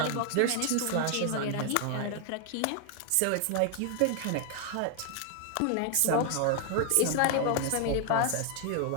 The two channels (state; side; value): different; both; correlation 0.00